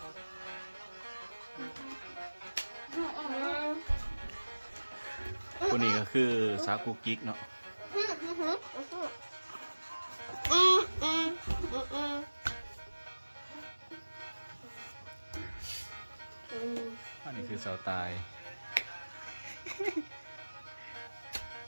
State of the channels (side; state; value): both; inverted; correlation -1.00